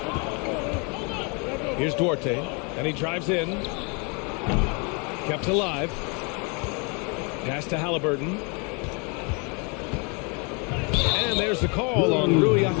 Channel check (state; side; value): quieter; right; 33.3 dB